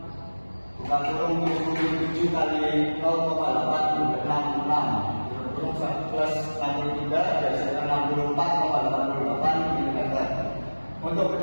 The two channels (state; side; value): inverted; both; correlation -1.00